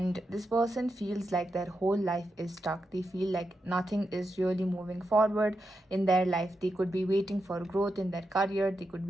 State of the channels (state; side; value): normal; both; correlation 0.86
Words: this person feels like their whole life is stuck. They feel like nothing is really moving forward in their life. They could be waiting for growth in their career, they could